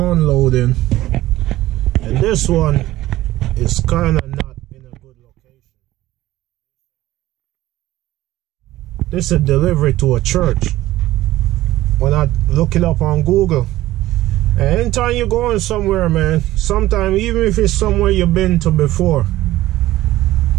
and this one is kind of not in a good location. This is a delivery to a church. When I look it up on Google, and anytime you're going somewhere, man, sometimes even if it's somewhere you've been to before,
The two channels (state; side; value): quieter; left; 15.9 dB